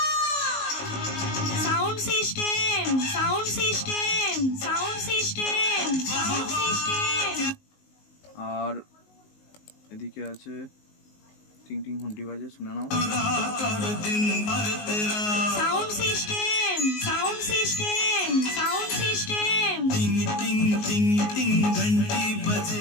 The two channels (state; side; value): late; right; 19 ms